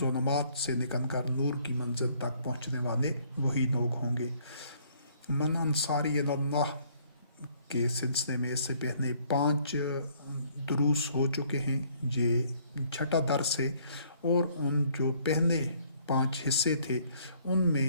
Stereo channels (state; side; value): inverted; both; correlation -0.63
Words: سے نکل کر نور کی منزل تک پہنچنے والے وہی لوگ ہوں گے۔ من انصاری اللہ کے سلسلے میں اس سے پہلے 5 دروس ہو چکے ہیں، یہ 6واں درس ہے، اور ان جو پہلے 5 حصے تھے ان